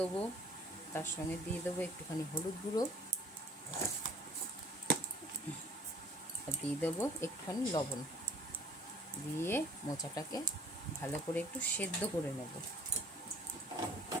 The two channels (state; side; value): normal; both; correlation 0.53